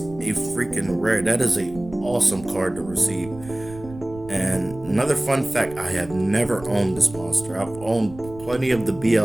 freaking rare, that is a awesome card to receive. And another fun fact, I have never owned this monster. I've owned plenty of the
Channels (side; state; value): right; noise; rumble, 17 dB below the sound